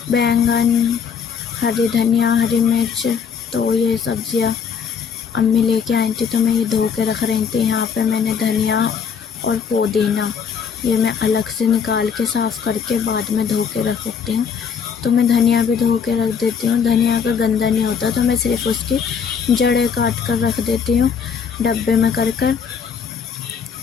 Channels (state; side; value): quieter; right; 6.7 dB